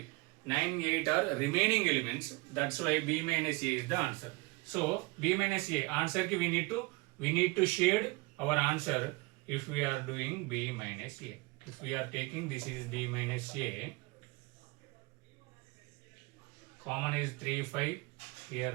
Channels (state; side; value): quieter; left; 25.7 dB